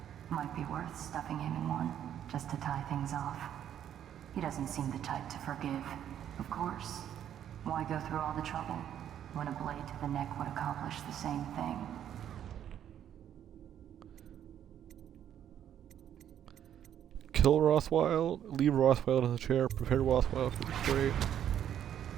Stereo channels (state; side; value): quieter; left; 10.1 dB